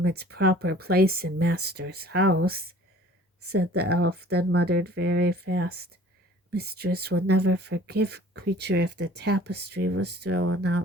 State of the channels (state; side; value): normal; both; correlation 0.50